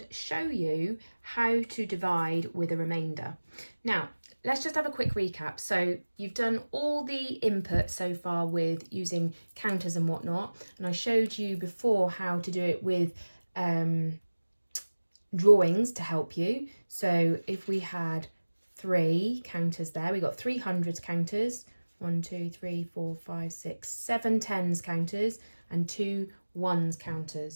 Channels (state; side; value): inverted; both; correlation -1.00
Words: show you how to divide with a remainder. Now, let's just have a quick recap. So you've done all the input so far with using counters and whatnot, and I showed you before how to do it with drawings to help you. So if we had 3 counters there, we got 3 hundreds counters, 1, 2, 3, 4, 5, 6, 7 tens counters, and 2 ones